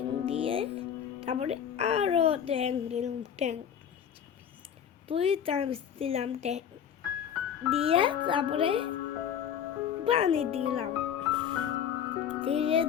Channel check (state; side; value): quieter; right; 8.7 dB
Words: দিয়ে তারপরে আরো ট্যাং দিলাম, 2 চামচ দিলাম ট্যাং দিয়ে তারপরে পানি দিলাম, ধীরে